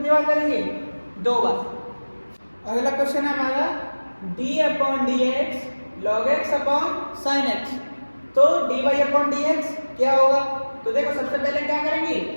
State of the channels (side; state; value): both; inverted; correlation -1.00